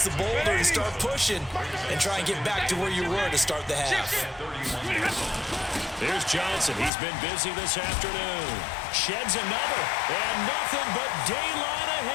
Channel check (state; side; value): drops out; right; at 6.9 s